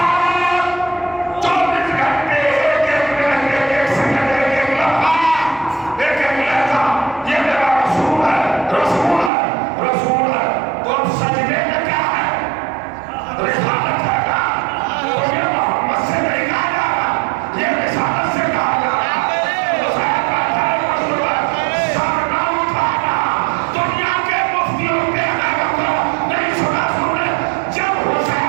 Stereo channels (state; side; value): drops out; left; at 9.3 s